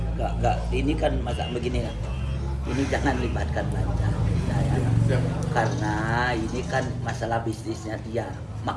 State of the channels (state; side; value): identical; both; correlation 1.00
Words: Nggak. Ini kan masa begini ya. Ini jangan libatkan Banjar. Karena ini kan masalah bisnisnya dia.